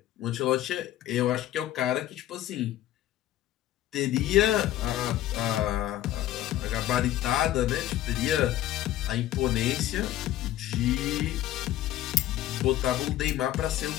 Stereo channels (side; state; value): right; quieter; 13.5 dB